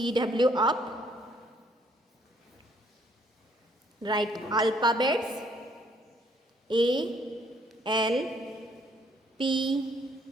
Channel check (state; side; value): normal; both; correlation 0.66